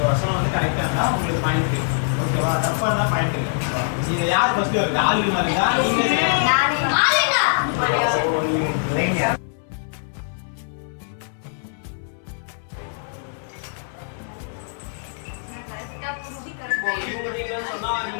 வருஷம் வந்து கரெக்டாக இருந்தால் உங்களுக்கு பாயிண்ட். ஓகேவா? தப்பா இருந்தால் பாயிண்ட் இல்லை. இது யார் ஃபர்ஸ்ட் வருது? ஆல்வின் வருதா? இவங்க நீங்க சொன்னா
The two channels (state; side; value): silent; right; 63 dB below the other